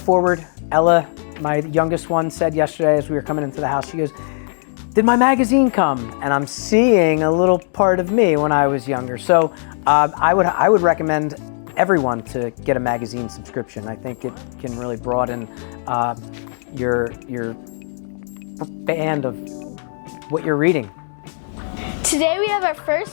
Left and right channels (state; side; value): silent; right; digital silence